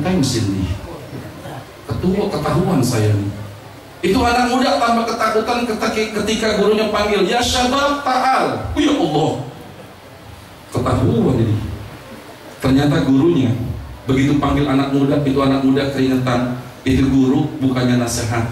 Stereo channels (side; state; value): both; identical; correlation 1.00